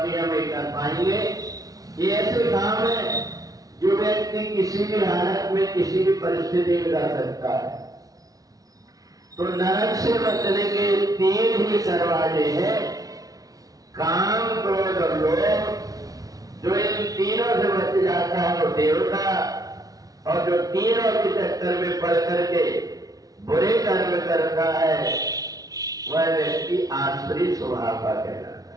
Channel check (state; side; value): late; left; 0.18 ms